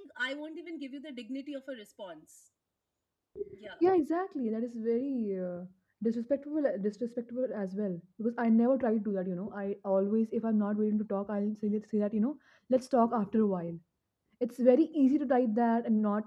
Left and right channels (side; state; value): both; identical; correlation 1.00